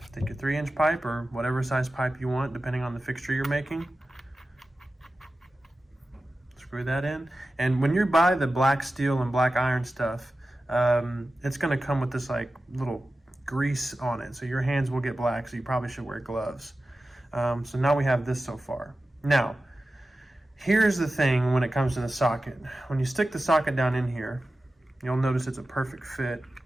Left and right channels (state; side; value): normal; both; correlation 0.94